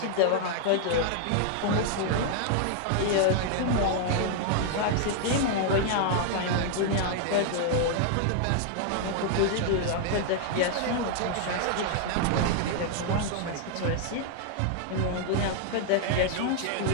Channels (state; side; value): different; both; correlation 0.00